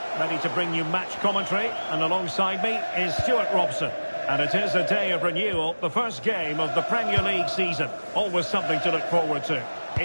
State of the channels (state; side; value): inverted; both; correlation -1.00